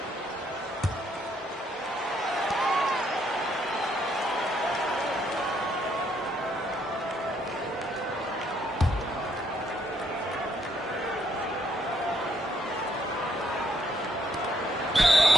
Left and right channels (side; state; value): both; normal; correlation 0.72